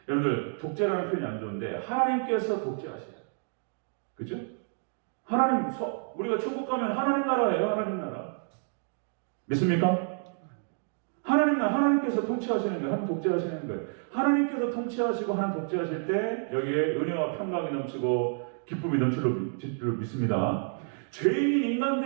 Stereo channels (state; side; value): silent; left; 58 dB below the other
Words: 여러분들 독재라는 표현이 안 좋은데 하나님께서 독재하셔요. 그죠? 우리가 천국 가면 하나님 나라예요. 하나님 나라. 믿습니까? 하나님께서 통치하시는 거예요. 하나님 독재하시는 거예요. 하나님께서 통치하시고 하나님 독재하실 때 여기에 은혜와 평강이 넘치고 기쁨이 넘칠 줄 믿습니다. 죄인인